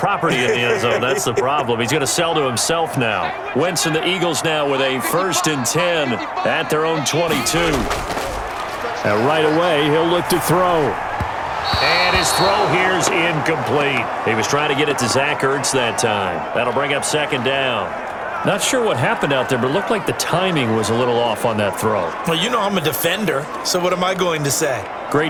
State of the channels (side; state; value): both; identical; correlation 1.00